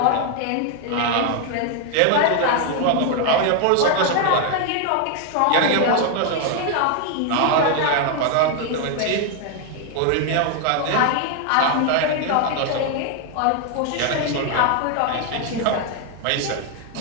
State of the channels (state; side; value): different; both; correlation 0.01